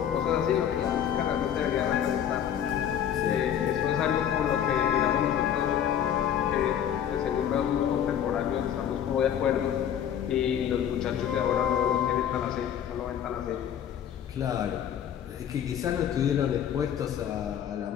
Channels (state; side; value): quieter; right; 9.5 dB